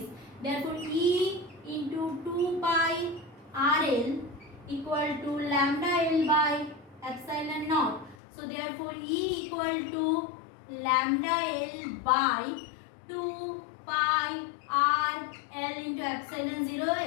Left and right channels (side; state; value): right; drops out; at 8.2 s